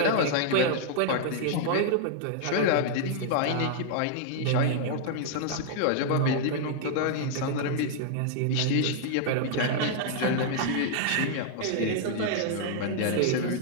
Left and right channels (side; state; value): both; different; correlation -0.01